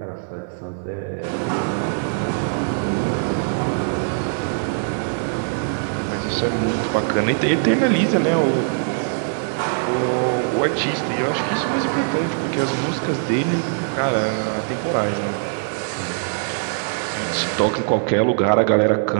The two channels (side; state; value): left; silent; digital silence